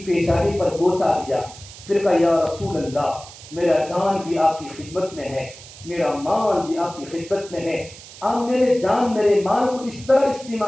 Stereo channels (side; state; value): right; noise; hiss, 17 dB below the sound